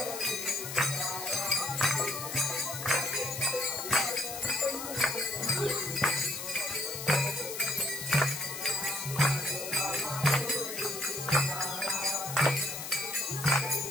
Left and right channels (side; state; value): left; noise; hiss, 7 dB below the sound